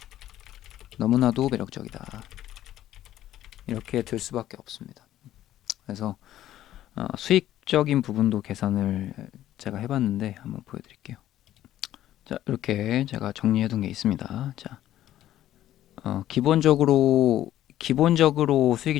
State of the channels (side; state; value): right; quieter; 12.9 dB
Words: 너무나도 매력적이다. 이렇게 들 수밖에 없습니다. 그래서 수익적인 부분도 계산을 제가 해봤는데 한번 보여드릴게요. 자, 이렇게 제가 정리해둔 게 있습니다. 자, 기본적으로 수익이